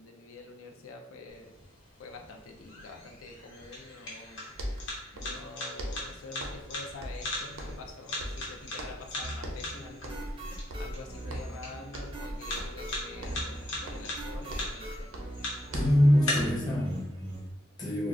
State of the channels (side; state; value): both; normal; correlation 0.78